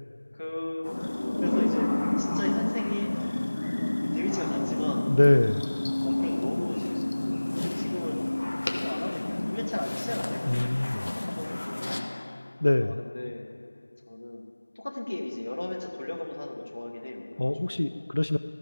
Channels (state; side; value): inverted; both; correlation -1.00